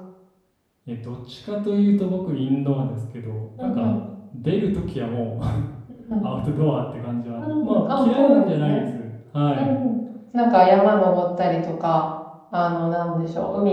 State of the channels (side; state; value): both; identical; correlation 1.00